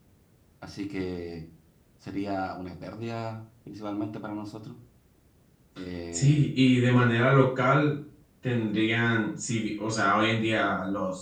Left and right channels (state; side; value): identical; both; correlation 1.00